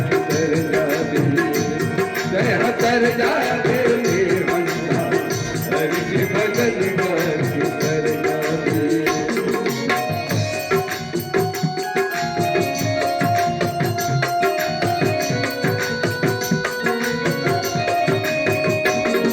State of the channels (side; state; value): both; identical; correlation 1.00